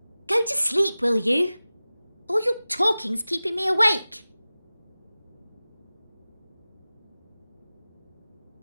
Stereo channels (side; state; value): both; inverted; correlation -0.97